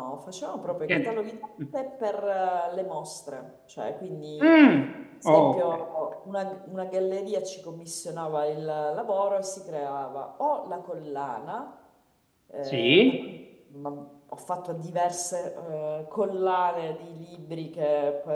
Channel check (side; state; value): both; identical; correlation 1.00